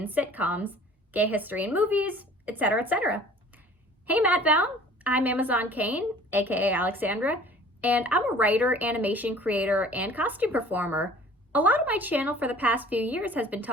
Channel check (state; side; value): normal; both; correlation 0.49